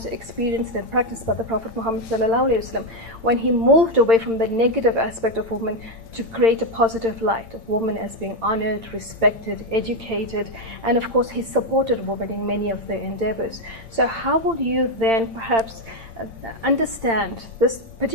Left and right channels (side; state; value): left; late; 8.8 ms